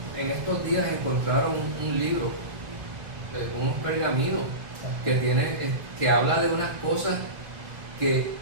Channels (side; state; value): left; late; 2.6 ms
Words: estos días encontraron un libro, unos pergaminos, que habla de unas cosas que